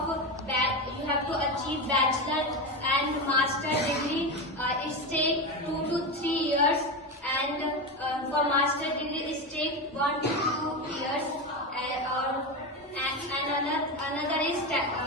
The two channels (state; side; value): normal; both; correlation 0.17